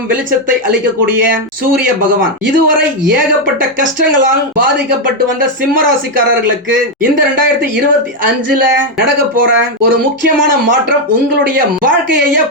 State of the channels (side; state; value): both; normal; correlation 0.03